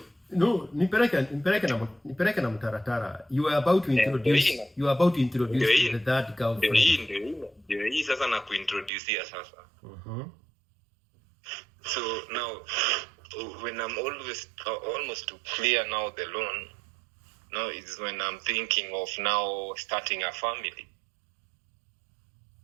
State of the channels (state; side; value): drops out; left; at 8.9 s